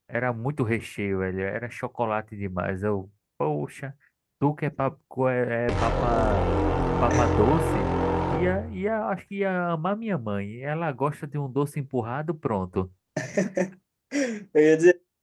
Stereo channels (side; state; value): both; identical; correlation 1.00